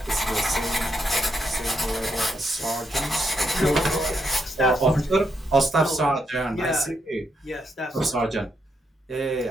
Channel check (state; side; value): normal; both; correlation 0.79